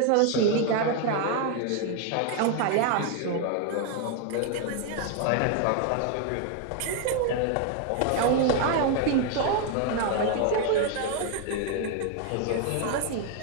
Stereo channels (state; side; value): different; both; correlation 0.01